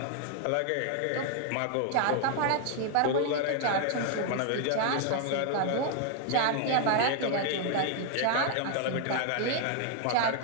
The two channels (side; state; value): both; different; correlation 0.00